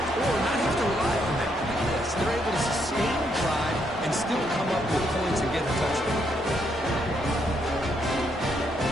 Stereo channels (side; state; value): both; normal; correlation 0.75